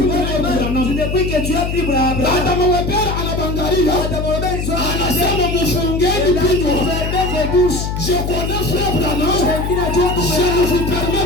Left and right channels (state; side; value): noise; left; hum, 3 dB below the sound